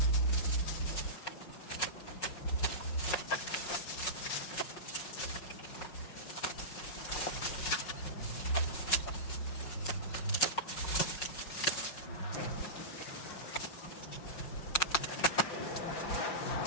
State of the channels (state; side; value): late; right; 5.4 ms